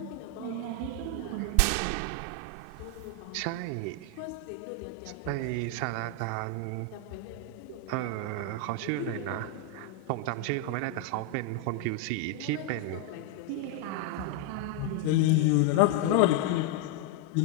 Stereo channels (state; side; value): different; both; correlation 0.00